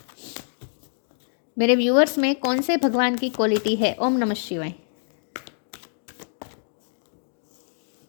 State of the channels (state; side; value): silent; right; digital silence